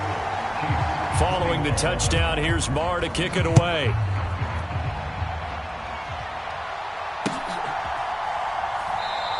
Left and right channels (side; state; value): both; identical; correlation 1.00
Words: Following the touchdown, here's Marr to kick it away.